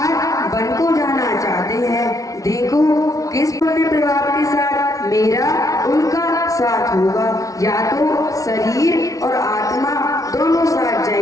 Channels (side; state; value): right; late; 0.17 ms